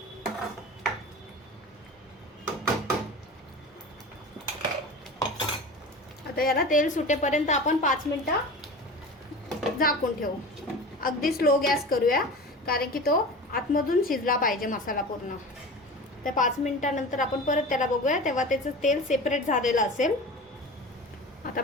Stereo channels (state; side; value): normal; both; correlation 0.33